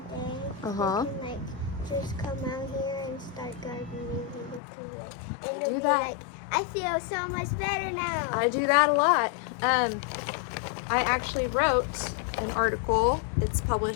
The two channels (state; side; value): drops out; right; at 4.6 s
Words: day, Uh-huh. we can like just come out here and start gardening. And Do that. Like, I feel so much better now. I do that a lot. I actually wrote an article, it's